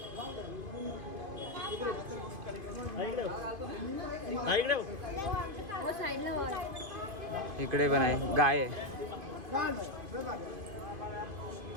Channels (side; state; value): left; late; 2.5 ms